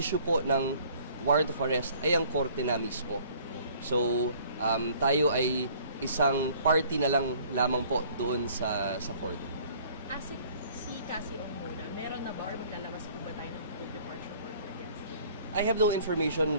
po ng warrant of arrest ay ang korte na mismo. So, tayo ay isang party na lang lamang po doon sa court. As si Cassie Ong muna, meron na ba or maglalabas po ba tayo ng full departure order against him? I have no information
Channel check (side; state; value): both; inverted; correlation -0.55